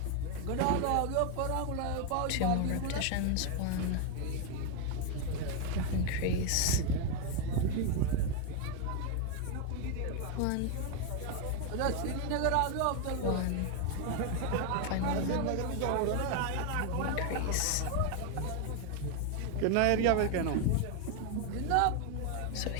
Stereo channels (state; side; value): different; both; correlation 0.01